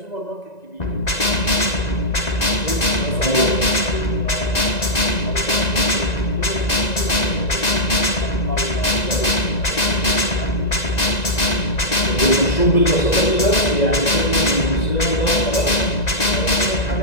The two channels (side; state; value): right; late; 1.9 ms